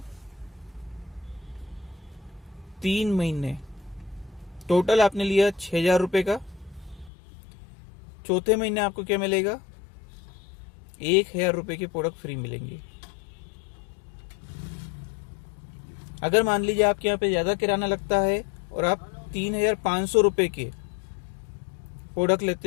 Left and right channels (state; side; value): drops out; right; at 7.1 s